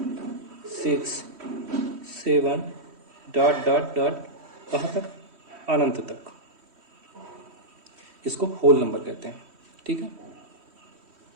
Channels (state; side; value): late; left; 3.1 ms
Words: 6 7 डॉट डॉट डॉट कहाँ तक, अनंत तक। इसको होल नंबर कहते हैं। ठीक है।